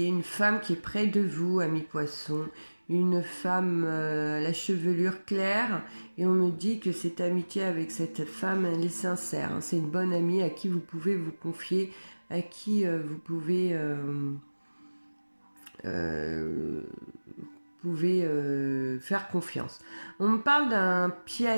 femme qui est près de vous, ami poisson, une femme à la chevelure claire, et on me dit que cette amitié avec cette femme, elle est sincère. Hein, c'est une bonne amie à qui vous pouvez vous confier, à qui vous pouvez pouvez faire confiance. On me parle d'un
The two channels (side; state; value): both; inverted; correlation -1.00